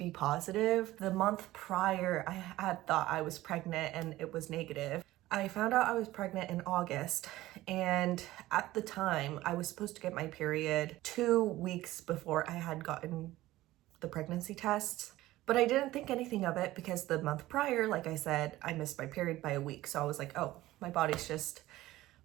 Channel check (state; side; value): quieter; left; 16.6 dB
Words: positive. The month prior, I had thought I was pregnant and it was negative. I found out I was pregnant in August, and at the time, I was supposed to get my period 2 weeks before I had gotten the pregnancy tests. But I didn't think anything of it because the month prior, like I said, I missed my period by a week. So I was like, oh, my body's just